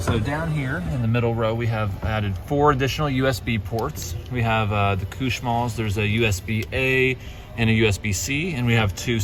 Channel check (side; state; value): both; identical; correlation 1.00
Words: So down here in the middle row, we have added 4 additional USB ports. We have the Kushmals. There's a USB-A and a USB-C, and we have 2